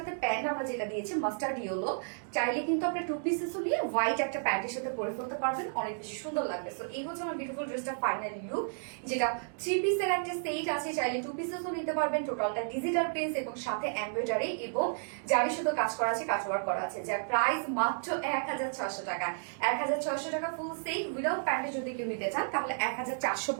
প্যান্ট আমরা যেটা দিয়েছি মাস্টার্ড ইয়েলো, চাইলে কিন্তু আপনি 2 পিসেসও নিয়ে হোয়াইট একটা প্যান্টের সাথে পরে ফেলতে পারবেন, অনেক বেশি সুন্দর লাগবে। সো এই হচ্ছে আমার বিউটিফুল ড্রেসটা ফাইনাল লুক, যেটা 3 পিসের একটা সেট আছে, চাইলে 2 পিসেসও নিতে পারবেন। টোটালটা ডিজিটাল প্রিন্ট এবং সাথে এমব্রয়ডারি এবং জারি সুতো কাজ করা আছে, কাজ ওয়ার্ক করা আছে, যার প্রাইস মাত্র 1600 টাকা। 1600 টাকা ফুল সেট উইদাউট প্যান্টে যদি কেউ নিতে চান তাহলে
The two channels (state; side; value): silent; left; digital silence